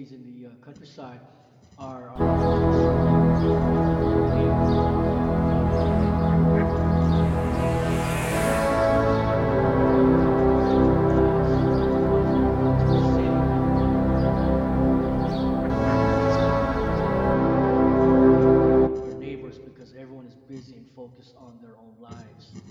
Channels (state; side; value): identical; both; correlation 1.00